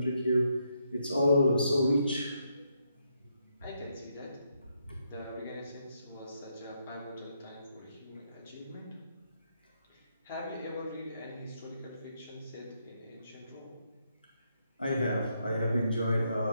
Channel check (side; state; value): both; inverted; correlation -0.78